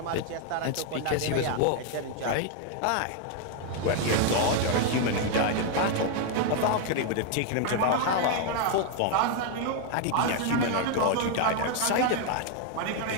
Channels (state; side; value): different; both; correlation 0.00